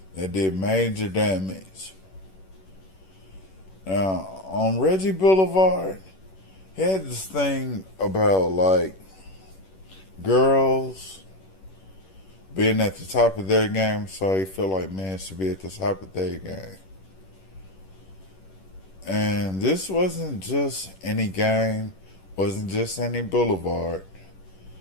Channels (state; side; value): late; right; 11 ms